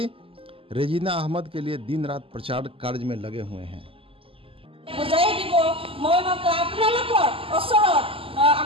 रेजीना अहमद के लिए दिन रात प्रचार कार्य में लगे हुए हैं।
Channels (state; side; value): late; left; 0.26 ms